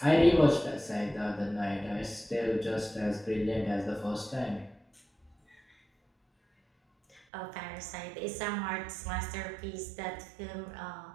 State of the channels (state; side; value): drops out; left; at 7.2 s